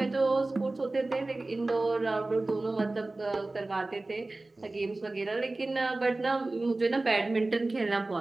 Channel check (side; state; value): left; quieter; 3.0 dB